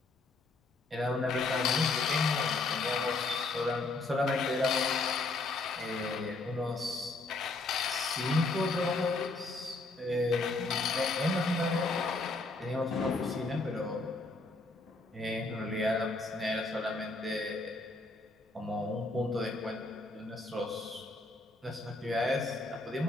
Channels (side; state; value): right; quieter; 3.3 dB